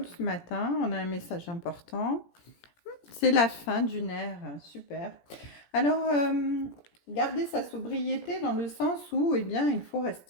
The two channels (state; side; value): late; right; 17 ms